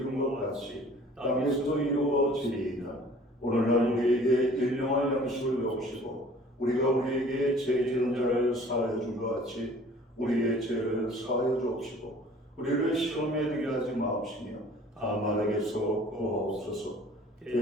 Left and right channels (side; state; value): both; normal; correlation 0.50